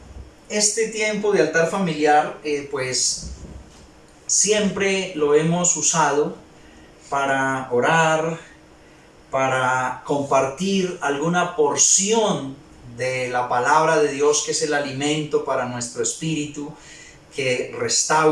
este tiempo de altar familiar pues siempre lo hemos usado para orar, para compartir alguna porción de la palabra de Dios, que es el alimento para nuestro espíritu, que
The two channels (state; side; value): identical; both; correlation 1.00